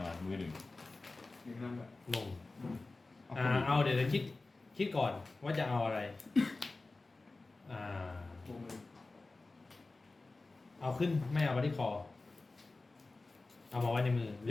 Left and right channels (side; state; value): right; quieter; 3.4 dB